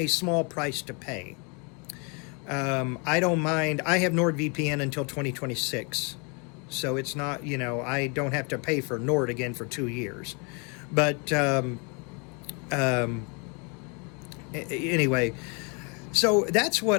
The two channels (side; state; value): right; quieter; 33.8 dB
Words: small price to pay. I don't mind. I have NordVPN until 2026, so it's not, I don't have to pay for Nord again for 2 years. But anyway, so that's